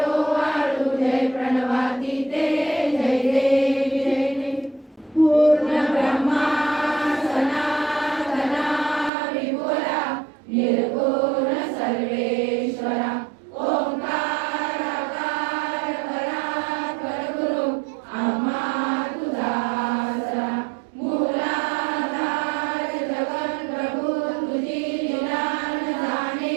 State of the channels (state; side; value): drops out; left; at 9.1 s